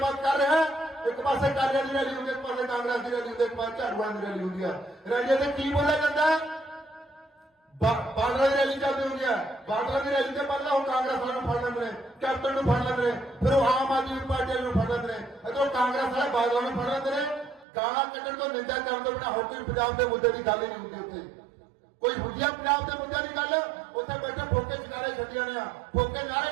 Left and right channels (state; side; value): drops out; left; at 17.7 s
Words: कर रहा है? एक पासे कालियां दी रैली होंदी, एक पासे कांग्रेस की रैली होंदी, एक पासे झाड़ू वालियां दी रैली होंदी है। रैलियां ते की बोलिया जाता है? बादलों की रैली चलती होंगी है। बादलों की रैली से पहले वो कांग्रेस वालों फड़ लेंगे, कैप्टन फड़ लेंगे, फिर वो आम आदमी पार्टी वालों फड़ लेंगे, इधर कांग्रेस वाले बादलों में फड़ लेंगे। गाला कट्टण तो निंदा करने तो बिना होर कोई पंजाब के मुद्दे की गल ही नहीं होती। उत्थे कोई होंदी है पंजाब के मुद्दे की गल? उत्थे बैठे फोके चकारे छड्डी जाने, फोके